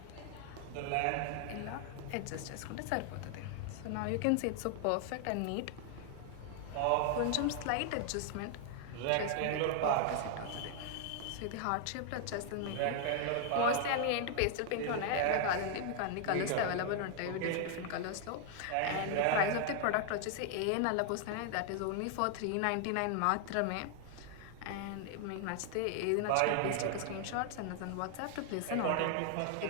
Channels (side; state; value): both; different; correlation 0.00